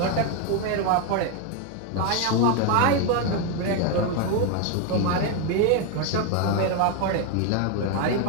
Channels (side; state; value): both; different; correlation 0.01